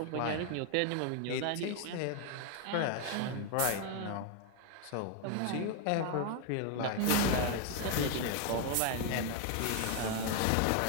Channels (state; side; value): different; both; correlation 0.00